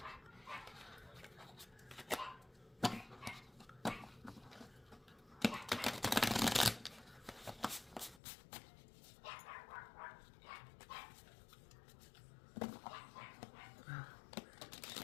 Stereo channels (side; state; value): right; drops out; at 8.2 s